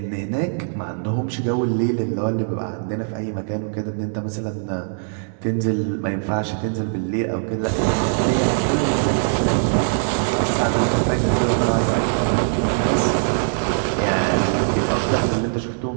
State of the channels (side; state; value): left; silent; 65 dB below the other